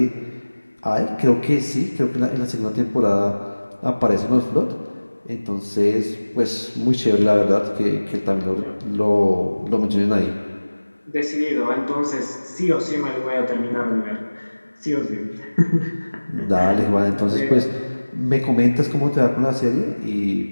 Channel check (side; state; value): both; inverted; correlation -1.00